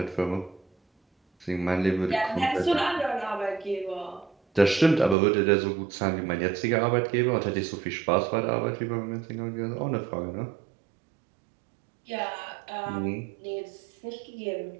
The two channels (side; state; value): left; drops out; at 5.2 s